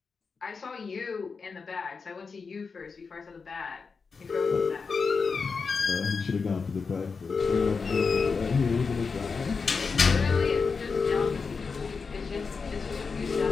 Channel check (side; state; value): right; quieter; 5.0 dB